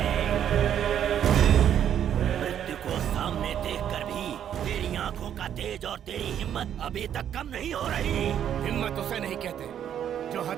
मृत्यु को सामने देखकर भी तेरी आंखों का तेज और तेरी हिम्मत अभी तक कम नहीं हो रही। हिम्मत उसे नहीं कहते जो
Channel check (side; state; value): left; quieter; 9.7 dB